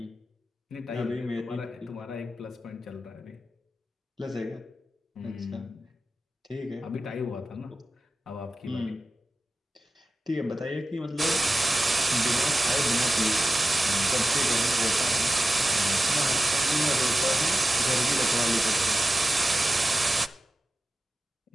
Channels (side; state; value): both; normal; correlation 0.94